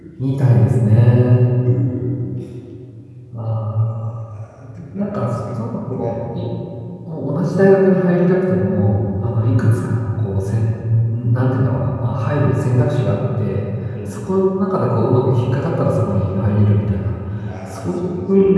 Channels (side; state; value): both; identical; correlation 1.00